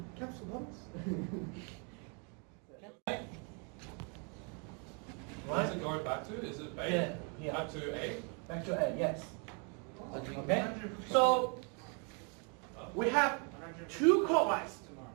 Capsule bombs? Where does it go back to? Is it A? Yeah. Back to A? Back to A, yes. Okay. So we have 2 clockwise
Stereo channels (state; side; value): quieter; left; 36.9 dB